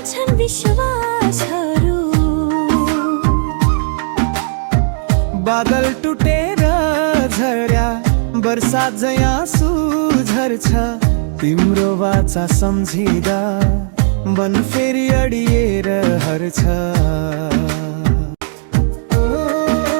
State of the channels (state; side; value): silent; left; digital silence